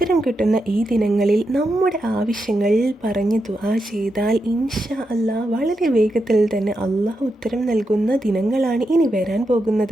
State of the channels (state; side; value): normal; both; correlation 0.86